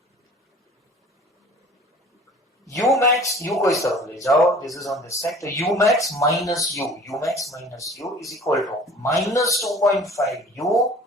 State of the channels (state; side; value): normal; both; correlation 0.47